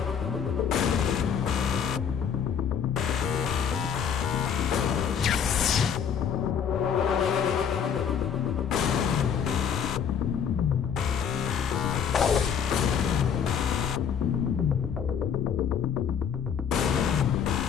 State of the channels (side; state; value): right; quieter; 7.6 dB